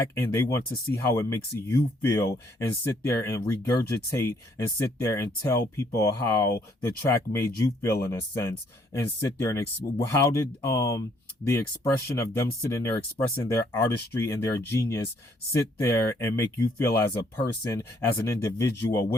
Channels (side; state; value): both; normal; correlation 0.67